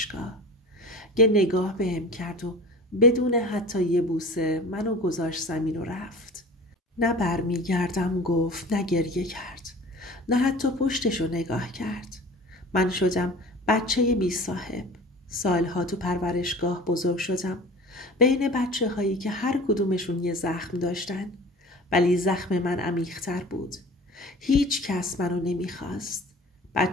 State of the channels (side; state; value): both; normal; correlation 0.40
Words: یه نگاه بهم کرد و بدون حتی یه بوسه منو گذاشت زمین و رفت. نه برمیگردم گفت، نه گریه کرد، نه حتی پشتشو نگاه کرد. من شدم بچه بی صاحب. سالها تو پرورشگاه بزرگ شدم، بین بچه هایی که هر کدومشون یه زخم داشتن، ولی زخم من عمیق‌تر بود. هیچ کس منو نمیخواست.